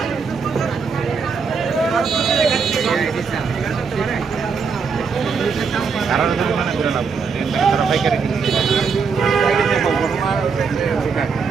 কারণ মনে করে না, তারা পাইকারি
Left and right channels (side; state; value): left; quieter; 5.5 dB